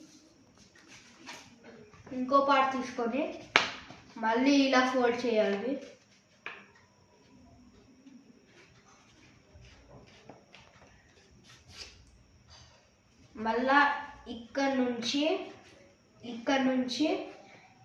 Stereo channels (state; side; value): identical; both; correlation 1.00